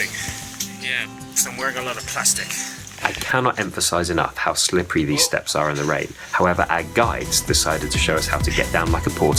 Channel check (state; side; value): identical; both; correlation 1.00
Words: Yeah. So I'm wearing a lot of plastic. I cannot emphasize enough how slippery these steps are in the rain. However, our guides decided to show us how to get down like a